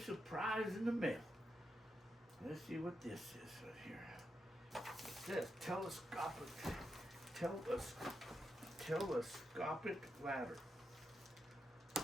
in the mail. Let's see what this is right here. It says telescopic ladder.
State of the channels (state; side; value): normal; both; correlation 0.85